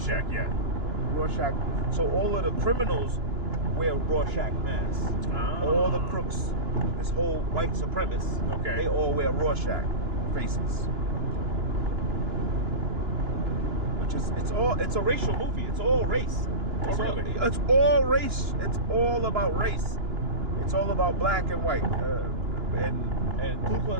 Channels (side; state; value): left; late; 2.9 ms